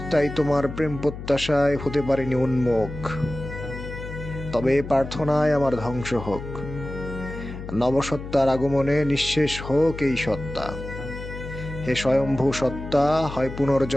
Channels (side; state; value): left; noise; hum, 10 dB below the sound